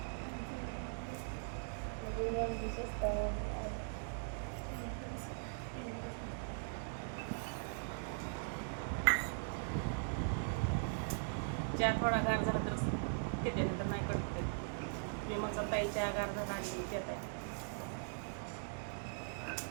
चहा थोडा गार झाला तर तिथे, नंतर नाही करते मी. मग ताई चहा गार झाला आणि देत आहे.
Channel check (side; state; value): left; silent; digital silence